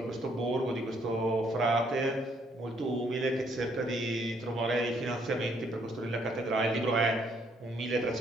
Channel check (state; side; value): normal; both; correlation 0.69